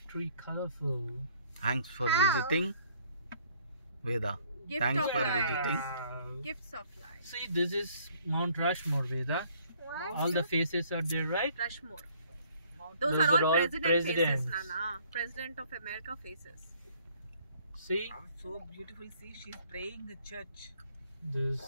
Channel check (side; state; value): both; inverted; correlation -0.61